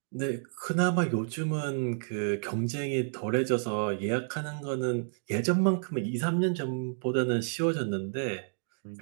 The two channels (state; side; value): silent; left; digital silence